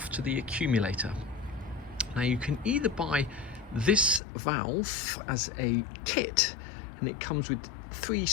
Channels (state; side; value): drops out; right; at 4.2 s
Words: to the accumulator. Now you can either buy this valve as a kit, and it comes with 3